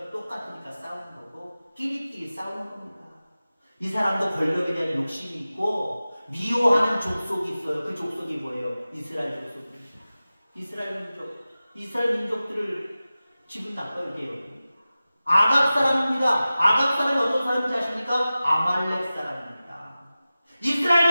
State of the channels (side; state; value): both; inverted; correlation -0.96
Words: 똑같으니까 싸우는 거고 끼리끼리 싸우는 겁니다. 이 사람도 권력에 대한 욕심이 있고 미워하는 족속이 있어요. 그 족속이 뭐예요? 이스라엘 족속입니다. 이스라엘 민족들을 기분 나빠요. 이게 아각 사람입니다. 아각 사람이 어떤 사람인지 아십니까? 아말렉 사람입니다.